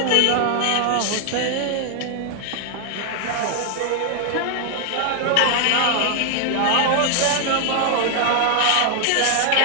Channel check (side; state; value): both; different; correlation 0.00